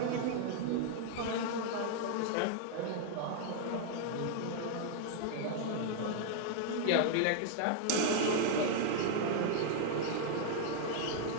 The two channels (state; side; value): different; both; correlation -0.01